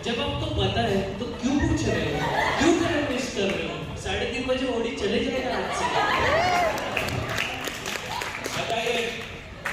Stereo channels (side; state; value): both; identical; correlation 1.00